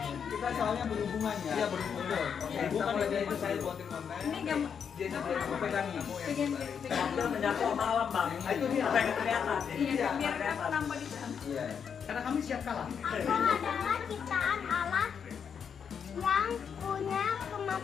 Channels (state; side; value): quieter; right; 7.2 dB